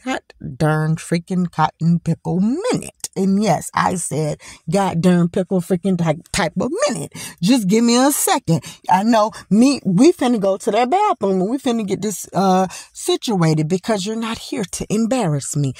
god darn freaking cotton pickle minute. And yes, I said god darn pickle freaking type of minute. Just give me a second. I know we finna go to that bathroom and we finna get this situated because you're not here to embarrass me.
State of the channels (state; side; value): identical; both; correlation 1.00